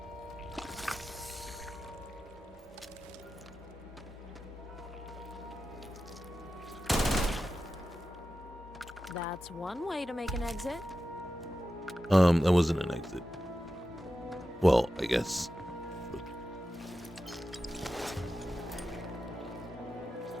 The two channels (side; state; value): both; normal; correlation 0.92